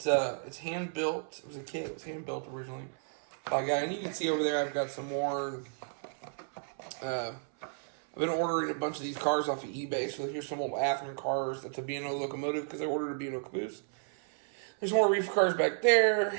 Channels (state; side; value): silent; left; 55 dB below the other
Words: hand built. It was a kit. It was hand built originally by a guy, and you can see over there I've got some more. I've been ordering a bunch of these cars off of eBay. So here's some old Athearn cars. That's a B&O locomotive because I ordered a B&O caboose. There's more reefer cars back there.